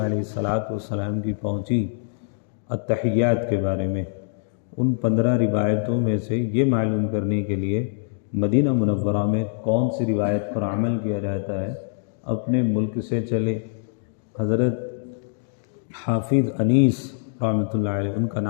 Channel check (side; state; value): right; silent; digital silence